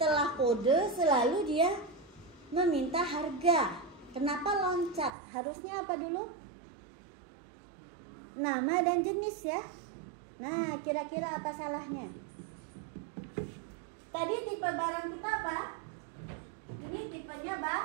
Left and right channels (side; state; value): left; drops out; at 5.1 s